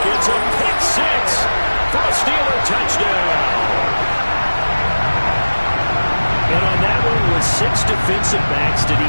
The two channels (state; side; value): inverted; both; correlation -1.00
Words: It's a pick 6 for a Steeler touchdown. And on that one, with 6 defensive backs, did he